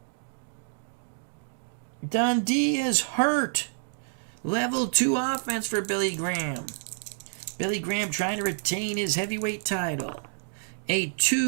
Dundee is hurt. Level 2 offense for Billy Graham. Billy Graham trying to retain his heavyweight title. A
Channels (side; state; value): left; silent; digital silence